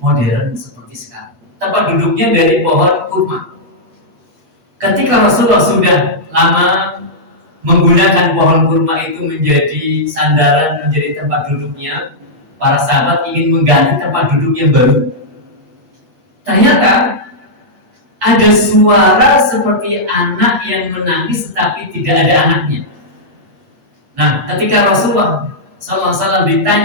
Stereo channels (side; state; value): left; late; 8.2 ms